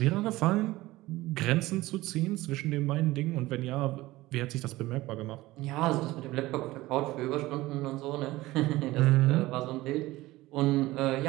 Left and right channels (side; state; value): left; quieter; 18.3 dB